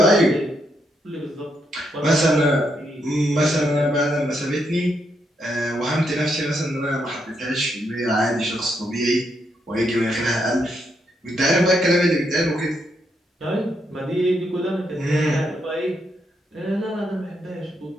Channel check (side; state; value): both; normal; correlation 0.79